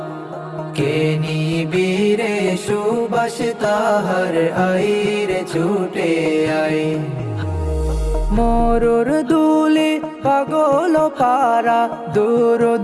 কে নিবিরে সুবাস তাহার আইরে ছুটে আয়। মরুর দুলে পাগল পারা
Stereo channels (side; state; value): both; identical; correlation 1.00